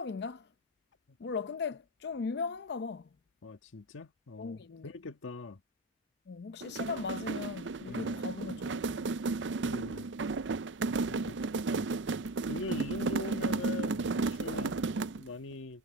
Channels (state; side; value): normal; both; correlation 0.23